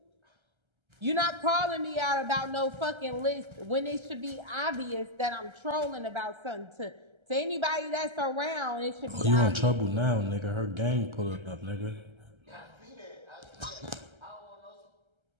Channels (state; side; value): late; left; 1.3 ms